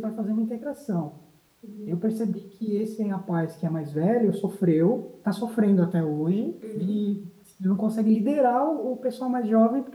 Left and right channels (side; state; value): both; identical; correlation 1.00